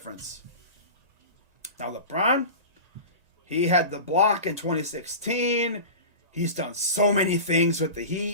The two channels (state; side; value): late; left; 1.9 ms